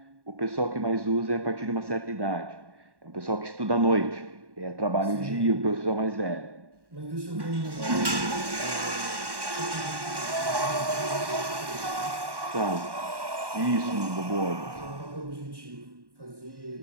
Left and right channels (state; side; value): late; left; 1.1 ms